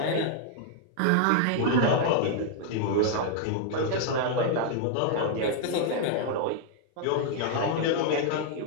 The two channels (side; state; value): both; different; correlation 0.00